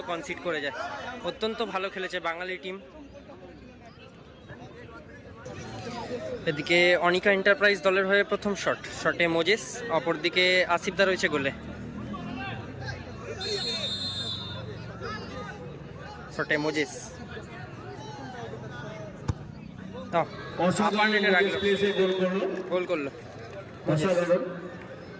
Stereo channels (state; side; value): identical; both; correlation 1.00